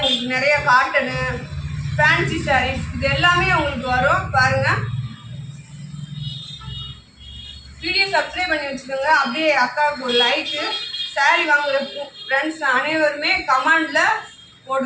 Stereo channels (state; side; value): identical; both; correlation 1.00